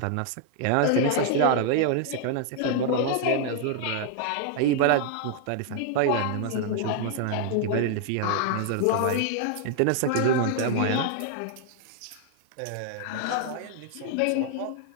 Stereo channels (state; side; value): different; both; correlation 0.00